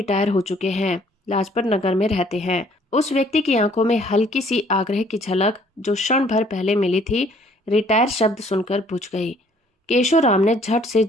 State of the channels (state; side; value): normal; both; correlation 0.60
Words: हो चुके हैं, लाजपत नगर में रहते हैं। उस व्यक्ति की आंखों में हल्की सी आग्रह की झलक जो क्षण भर पहले मिली थी, रिटायर शब्द सुनकर बुझ गई। केशोराम ने झट से